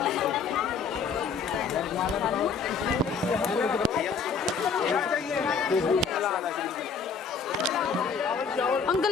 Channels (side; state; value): right; quieter; 5.5 dB